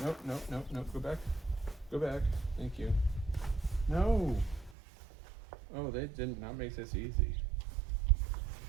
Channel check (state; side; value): drops out; left; at 4.8 s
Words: Nope. Go back. Go back. Thank you. No. Oh, they did not make this easy.